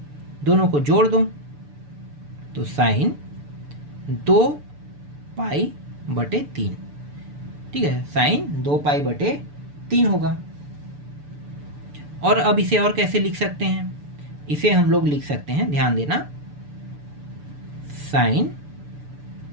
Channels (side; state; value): left; late; 6.9 ms